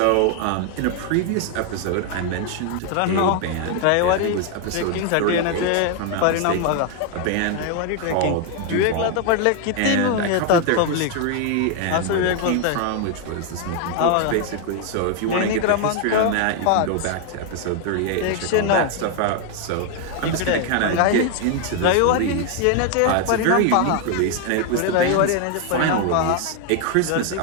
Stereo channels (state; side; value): different; both; correlation 0.01